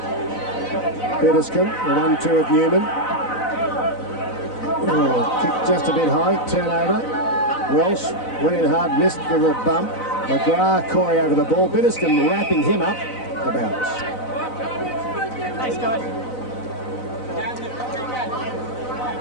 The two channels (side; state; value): right; late; 4.0 ms